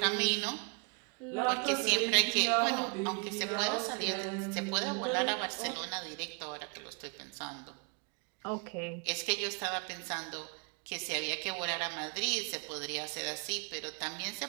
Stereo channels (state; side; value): quieter; left; 37.3 dB